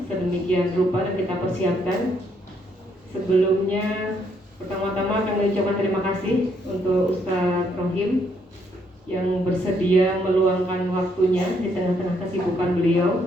sedemikian rupa dan kita persiapkan. Sebelumnya, pertama-tama kami ucapkan terima kasih untuk Ustadz Rohim yang bersedia meluangkan waktunya di tengah-tengah kesibukan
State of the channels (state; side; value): normal; both; correlation 0.72